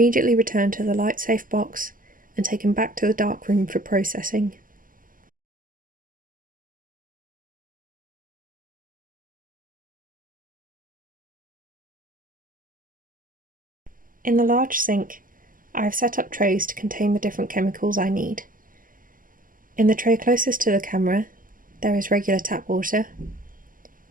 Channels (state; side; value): late; left; 0.40 ms